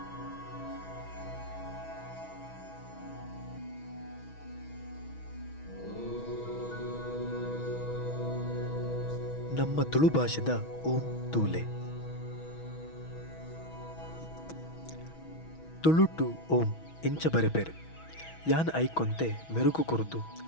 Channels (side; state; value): right; late; 6.2 ms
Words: ನಮ್ಮ ತುಳು ಭಾಷೆದ ಓಂ ತೂಲೆ. ತುಳುಟು ಓಂ ಇಂಚ ಬರೆಪೇರು ಯಾನ್ ಐಕೊಂತೆ ಮೆರುಗು ಕುರಿತು